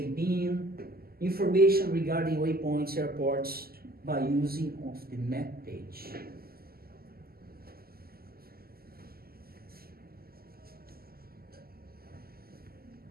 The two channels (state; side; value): late; left; 0.44 ms